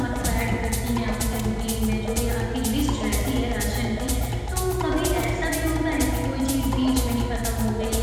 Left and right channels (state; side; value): identical; both; correlation 1.00